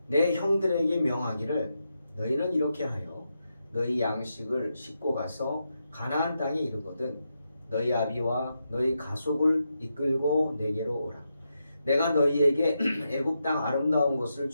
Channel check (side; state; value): both; inverted; correlation -0.85